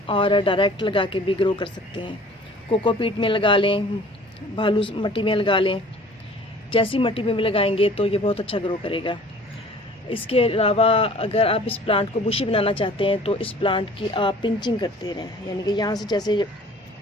और डायरेक्ट लगा के भी ग्रो कर सकते हैं। कोकोपीट में लगा लें, भालू मिट्टी में लगा लें, जैसी मिट्टी में भी लगाएंगे तो ये बहुत अच्छा ग्रो करेगा। इसके अलावा अगर आप इस प्लांट को बुशी बनाना चाहते हैं तो इस प्लांट की आप पिंचिंग करते रहें, यानी कि यहाँ से जैसे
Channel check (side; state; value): both; normal; correlation 0.49